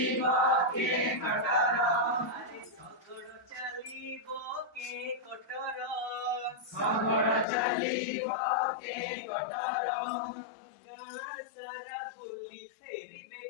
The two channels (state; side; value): drops out; right; at 7.5 s